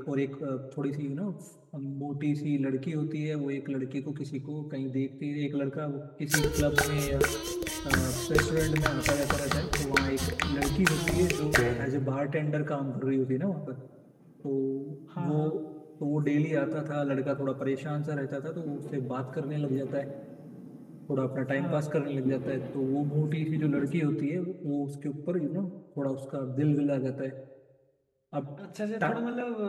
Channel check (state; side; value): identical; both; correlation 1.00